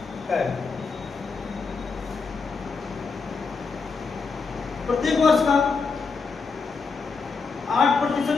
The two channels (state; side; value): quieter; right; 4.8 dB